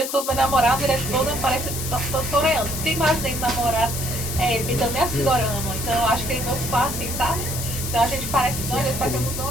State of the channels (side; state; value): left; noise; hiss, 5 dB below the sound